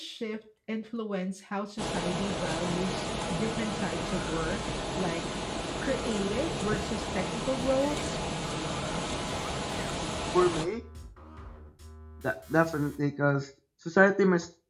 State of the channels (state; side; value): identical; both; correlation 1.00